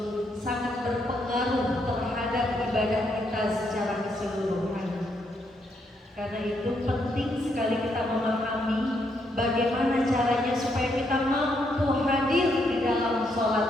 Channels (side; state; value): both; normal; correlation 0.76